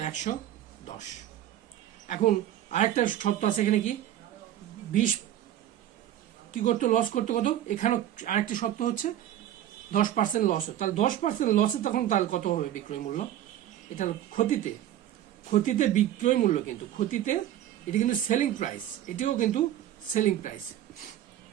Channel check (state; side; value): quieter; left; 12.0 dB